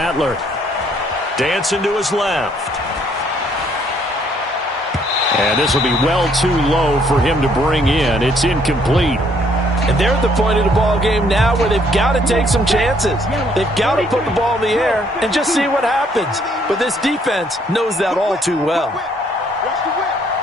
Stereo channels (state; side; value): normal; both; correlation 0.66